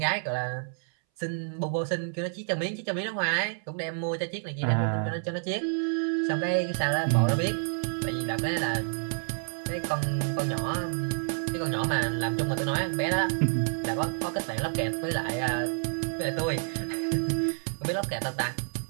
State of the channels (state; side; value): silent; left; 59 dB below the other